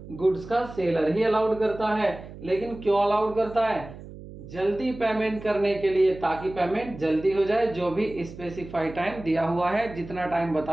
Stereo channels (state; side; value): noise; right; hum, 15 dB below the sound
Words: गुड्स का सेलर ही अलाउड करता है। लेकिन क्यों अलाउड करता है? जल्दी पेमेंट करने के लिए, ताकि पेमेंट जल्दी हो जाए। जो भी स्पेसिफाइड टाइम दिया हुआ है, जितना टाइम